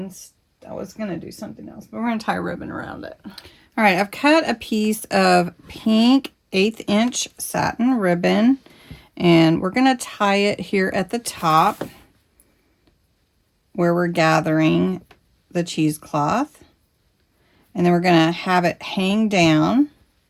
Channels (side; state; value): both; identical; correlation 1.00